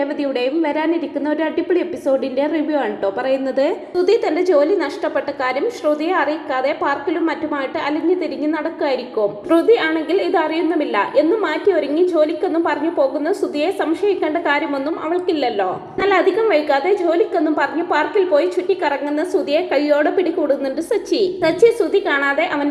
വരാനിരിക്കുന്ന ഒരു അടിപൊളി എപ്പിസോഡിന്റെ റിവ്യൂ ആണ് കേട്ടോ പറയുന്നത്. ശ്രുതി തന്റെ ജോലി നഷ്ടപ്പെട്ട കാര്യം ശ്രുതിയെ അറിയിക്കാതെ പാർക്കിലും മറ്റുമായിട്ട് അലിഞ്ഞു തിരിഞ്ഞ് നടക്കുമായിരിക്കും. ശ്രുതി ആണെങ്കിൽ ഇത് അറിയുന്നുമില്ല എന്നും മാറ്റി ഒരുങ്ങി ജോലിക്കൊന്നും പറഞ്ഞു പോകുന്ന ശ്രുതിയെ സംശയിക്കേണ്ട കാര്യമൊന്നും അവൾക്കില്ലല്ലോ. എന്നാൽ അധികം വൈകാതെ ജോലിക്കൊന്നും പറഞ്ഞു പാർക്കിൽ പോയി ചുറ്റിക്കറങ്ങുന്ന ശ്രുതിയെ കൈയോടെ പിടികൂടുന്നുണ്ട് സച്ചി. ശ്രുതി കാണാതെ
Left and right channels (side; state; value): both; identical; correlation 1.00